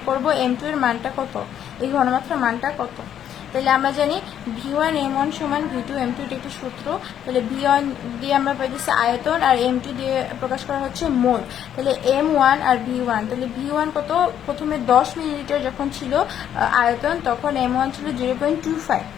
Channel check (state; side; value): quieter; right; 9.9 dB